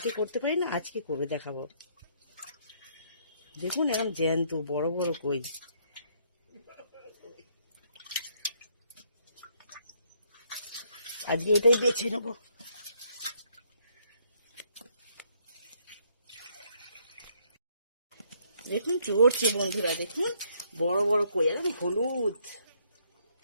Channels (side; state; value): both; inverted; correlation -0.69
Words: করতে পারি না, আজকে করে দেখাবো। দেখুন এরকম জ্যান্ত বড় বড় কই। আজকে এটাই বেছে নেবো। দেখুন চড়ছে বন্ধুরা, দেখুন বড় বড় কই, একদম হলুদ।